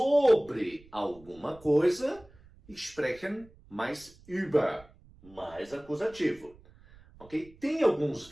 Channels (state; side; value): noise; right; rumble, 25 dB below the sound